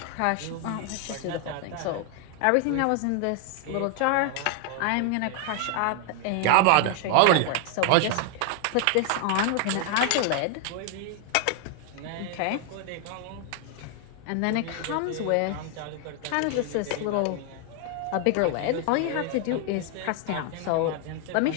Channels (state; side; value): different; both; correlation 0.00